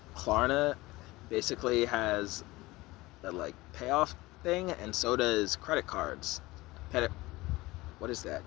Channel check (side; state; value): right; quieter; 20.1 dB